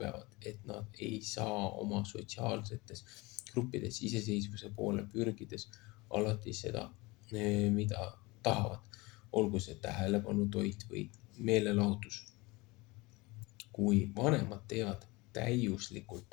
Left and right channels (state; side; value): quieter; right; 23.5 dB